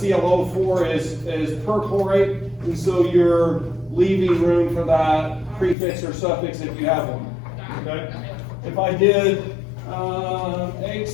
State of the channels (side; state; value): right; drops out; at 5.8 s